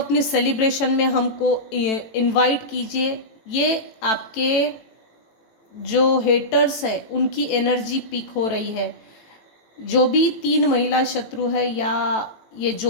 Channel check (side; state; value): right; late; 18 ms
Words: सेलिब्रेशन में हमको इनवाइट कीजिए। ये आपके जो हेटर्स है उनकी एनर्जी पीक हो रही है। जो भी 3 महिला शत्रु है, या ये